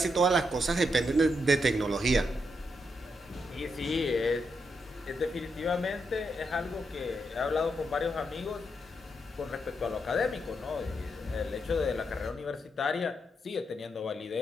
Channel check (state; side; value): normal; both; correlation 0.81